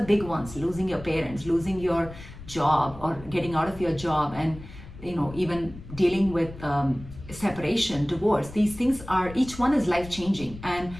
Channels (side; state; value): left; noise; rumble, 15 dB below the sound